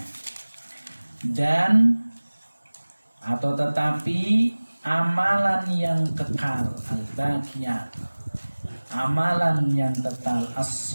Dan atau tetapi amalan yang kekal, al-baqiyat, amalan yang kekal,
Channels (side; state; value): both; inverted; correlation -1.00